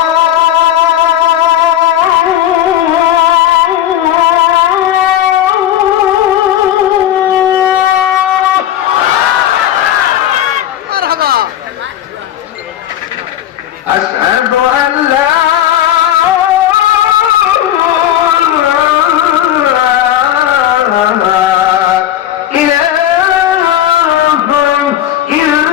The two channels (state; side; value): quieter; right; 11.6 dB